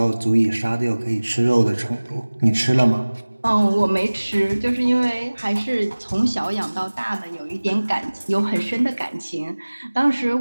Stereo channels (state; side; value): inverted; both; correlation -1.00